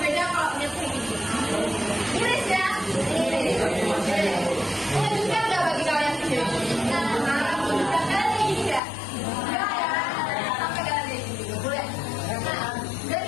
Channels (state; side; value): drops out; right; at 8.8 s